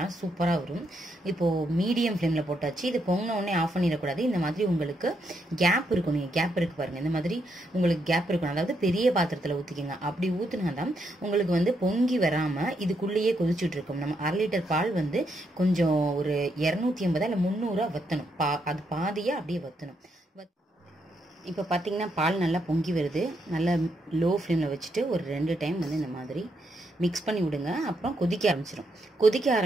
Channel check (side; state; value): both; normal; correlation 0.78